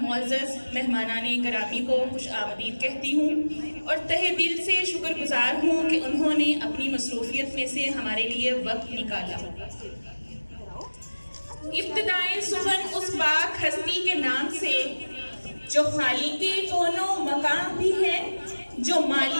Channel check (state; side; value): inverted; both; correlation -1.00